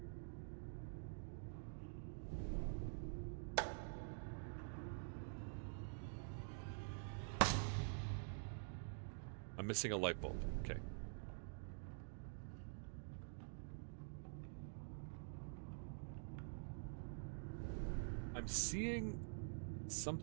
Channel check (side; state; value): left; silent; digital silence